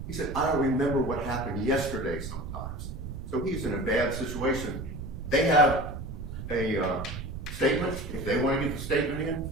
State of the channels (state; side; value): noise; right; rumble, 7 dB below the sound